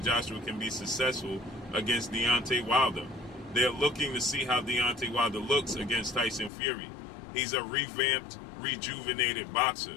can be successful against Deontay Wilder. They're looking to see how Deontay Wilder looks against Tyson Fury. He's a revamped, rejuvenated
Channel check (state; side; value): drops out; right; at 6.5 s